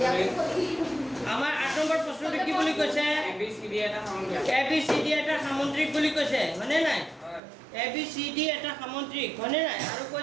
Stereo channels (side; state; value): left; drops out; at 7.4 s